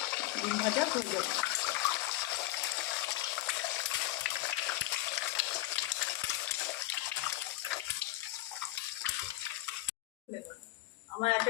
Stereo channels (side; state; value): right; quieter; 17.4 dB